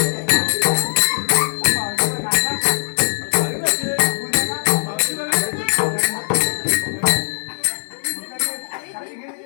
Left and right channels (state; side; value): silent; right; 57 dB below the other